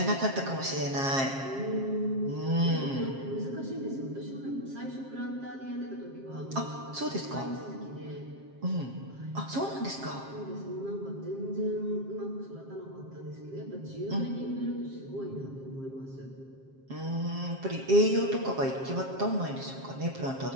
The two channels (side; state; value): left; late; 7.5 ms